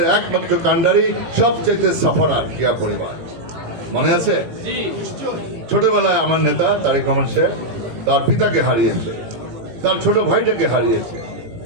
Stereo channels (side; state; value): left; late; 18 ms